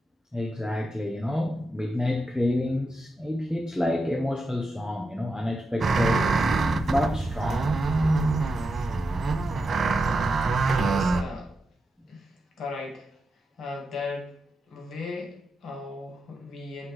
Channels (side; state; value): both; normal; correlation 0.87